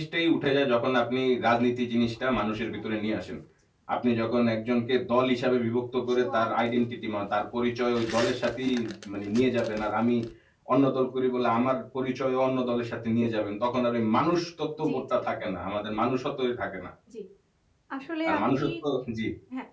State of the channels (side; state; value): both; identical; correlation 1.00